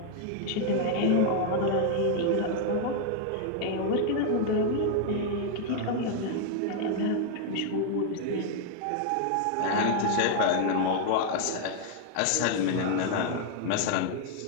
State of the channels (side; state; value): both; different; correlation 0.00